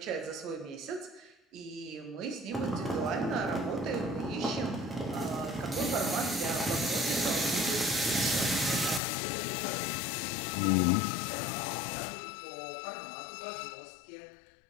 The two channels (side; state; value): right; drops out; at 9.0 s